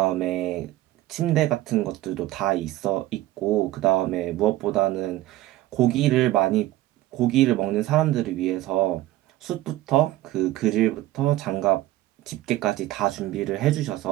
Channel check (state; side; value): quieter; left; 15.8 dB